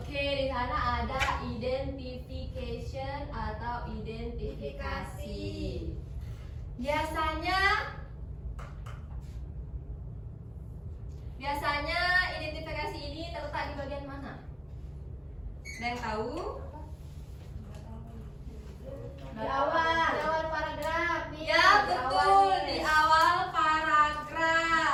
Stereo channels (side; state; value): both; identical; correlation 1.00